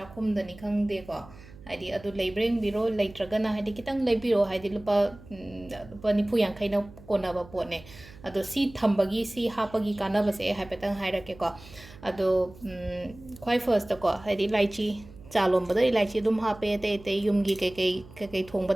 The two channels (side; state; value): right; noise; hum, 20 dB below the sound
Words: ꯈꯪꯗꯦꯀꯣ ꯍꯥꯏꯗꯤ ꯑꯗꯨ ꯂꯩꯕ꯭ꯔꯥ ꯌꯦꯡꯕꯤꯔꯣ ꯂꯩꯇ꯭ꯔꯒꯅ ꯍꯥꯏꯗꯤ ꯈꯤꯇꯪ ꯂꯩꯕꯤꯔꯣ ꯍꯥꯏꯗꯤ ꯂꯨꯄꯥ ꯅꯤꯐꯨ ꯌꯥꯡꯈꯩꯅ ꯀꯣꯟꯅꯕ ꯄꯣꯠꯅꯦ ꯑꯗꯣ ꯁꯤ ꯊꯝꯕꯒꯤ ꯁꯤ ꯍꯥꯞꯄꯒꯤ ꯀꯥꯟꯅꯕꯁꯦ ꯑꯩ ꯍꯥꯏꯐꯦꯠꯇꯪ ꯍꯥꯏꯔꯛꯀꯦꯀꯣ ꯑꯗꯣ ꯈ꯭ꯋꯥꯏ ꯐꯔꯁꯇꯀꯣ ꯍꯥꯏꯗꯤ ꯏꯂꯥꯏꯆꯤ ꯆꯥ ꯂꯣꯟꯕꯗ ꯏꯂꯥꯏꯆꯤ ꯑꯗꯨꯝ ꯍꯥꯞꯄꯦ ꯑꯇꯩ ꯑꯇꯩ ꯌꯨꯝꯒꯤ ꯀꯩꯀꯩ ꯊꯣꯡꯕ